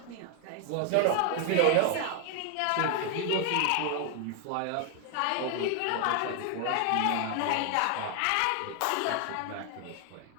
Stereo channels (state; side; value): different; both; correlation 0.01